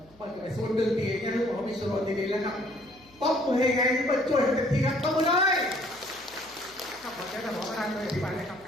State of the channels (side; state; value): left; noise; hum, 28 dB below the sound